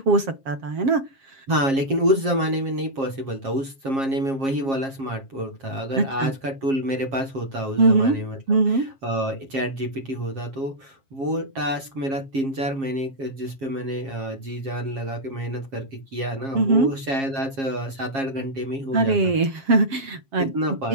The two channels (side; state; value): left; late; 7.4 ms